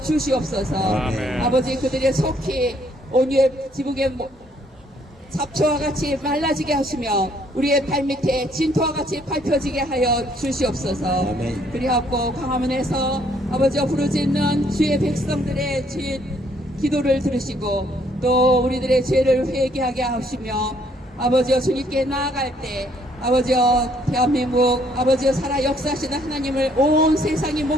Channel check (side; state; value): both; normal; correlation 0.66